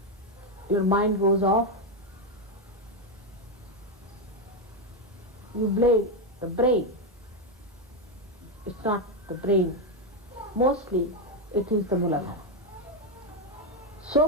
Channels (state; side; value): normal; both; correlation 0.06